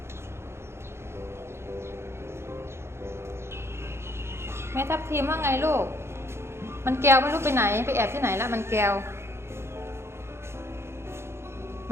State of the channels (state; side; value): late; left; 0.12 ms